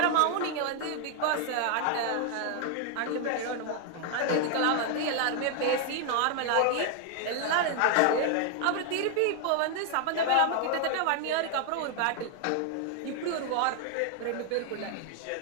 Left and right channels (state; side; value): different; both; correlation 0.00